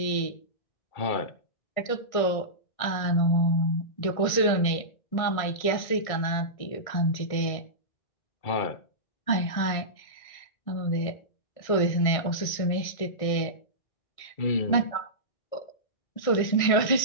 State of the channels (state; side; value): late; right; 1.6 ms